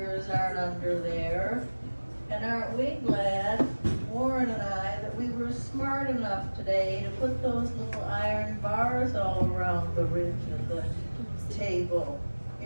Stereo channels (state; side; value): inverted; both; correlation -1.00